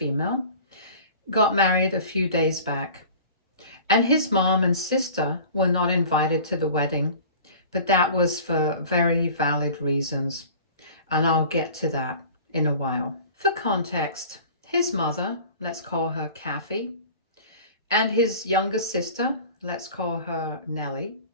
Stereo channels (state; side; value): inverted; both; correlation -0.42